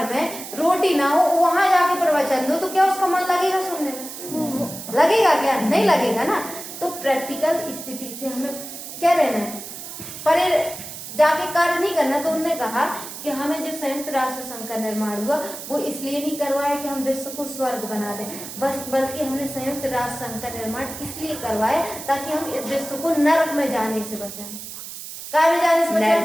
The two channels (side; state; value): right; noise; hiss, 11 dB below the sound